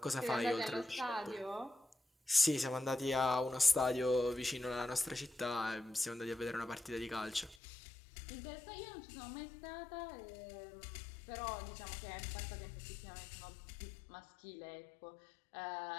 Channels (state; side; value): drops out; right; at 7.6 s